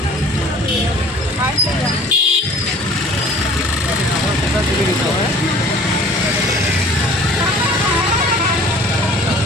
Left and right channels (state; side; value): normal; both; correlation 0.48